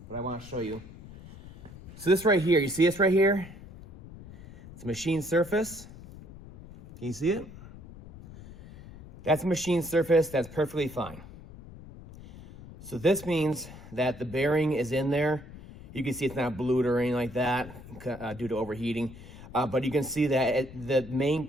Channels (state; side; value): noise; left; rumble, 17 dB below the sound